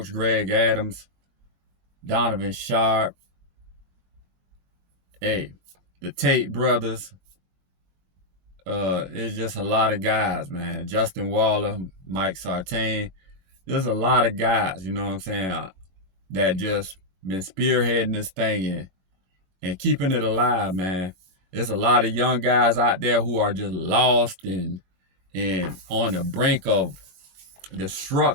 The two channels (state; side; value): late; left; 21 ms